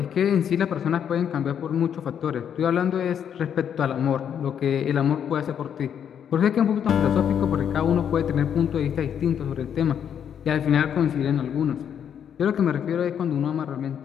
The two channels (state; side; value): quieter; right; 8.6 dB